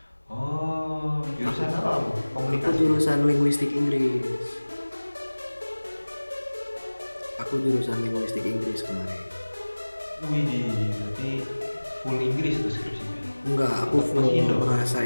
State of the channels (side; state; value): both; inverted; correlation -1.00